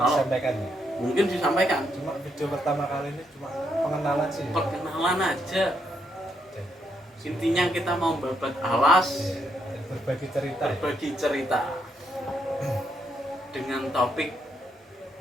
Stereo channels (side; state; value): both; normal; correlation 0.77